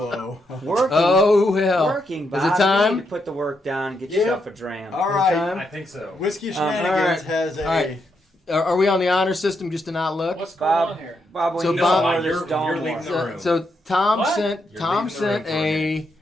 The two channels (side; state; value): both; normal; correlation 0.80